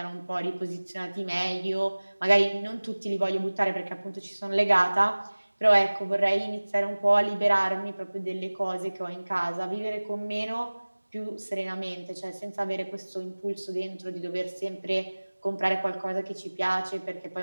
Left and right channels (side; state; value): both; inverted; correlation -1.00